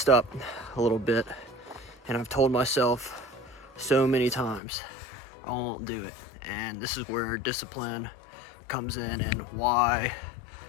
up a little bit. And I've told myself so many times I won't do it. And this is where discipline comes in, and why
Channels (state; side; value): drops out; right; at 4.6 s